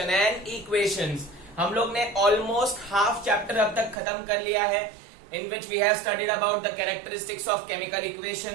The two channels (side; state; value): left; drops out; at 4.0 s